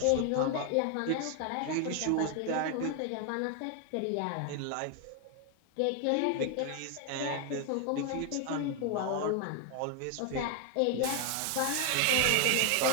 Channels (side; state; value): both; different; correlation 0.00